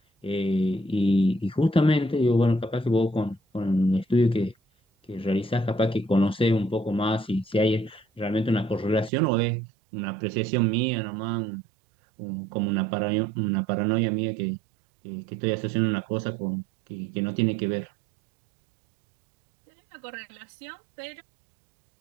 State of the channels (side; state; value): left; drops out; at 9.1 s